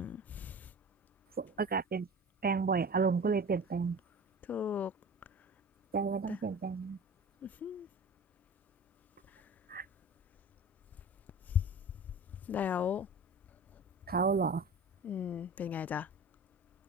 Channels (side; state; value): both; normal; correlation 0.37